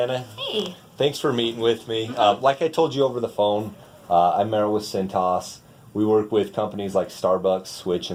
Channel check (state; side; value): identical; both; correlation 1.00